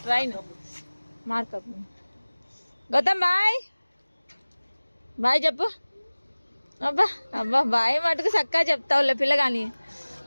ట్రైన్ మార్కప్. గౌతమ్ బాయ్ బాయ్ చెప్పు. అబ్బా అబ్బా బాయ్ మటుకు చక్కగా చెప్తావులే పిల్లగాని.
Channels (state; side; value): inverted; both; correlation -1.00